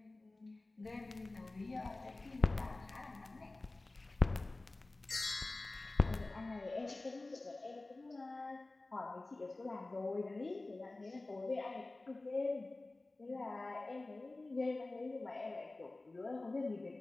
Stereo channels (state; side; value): quieter; right; 3.1 dB